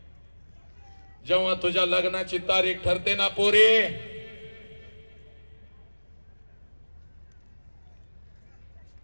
जेव्हा तुझ्या लग्नाची तारीख ठरते ना पोरी,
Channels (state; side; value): inverted; both; correlation -1.00